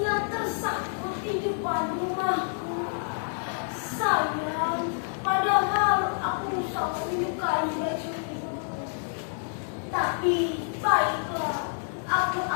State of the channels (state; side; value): silent; right; 59 dB below the other